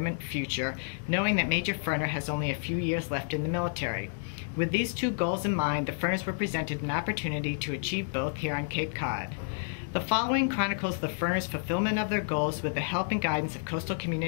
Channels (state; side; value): silent; right; digital silence